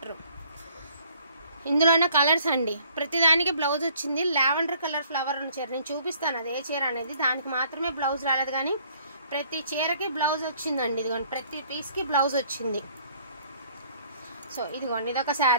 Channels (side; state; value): both; inverted; correlation -0.60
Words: ఇందులోనే కలర్స్ అండి, ప్రతిదానికి బ్లౌజ్ వచ్చింది। లావెండర్ కలర్ ఫ్లవర్ ఉన్న చీర నేను చూపిస్తాను, అదే చీర అనేది, దానికి మాత్రమే బ్లౌజ్ రాలేదు, కానీ ప్రతి చీరకి బ్లౌజ్ వచ్చిందండి। ఇదిగోండి, ప్రతి పీస్కి బ్లౌజ్ వచ్చింది। సో ఇదిగోండి, ఇదొక